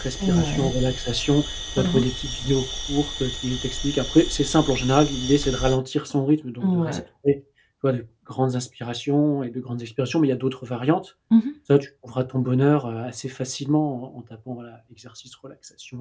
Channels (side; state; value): both; identical; correlation 1.00